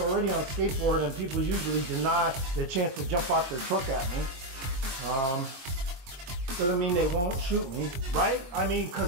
on skateboard, and people usually deny the chance to jump out their truck at me. Doesn't mean they won't shoot me, right? I mean,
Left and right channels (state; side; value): late; left; 22 ms